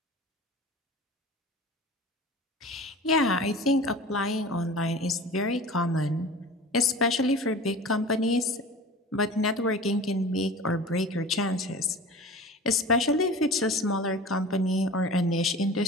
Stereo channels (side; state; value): both; normal; correlation 0.38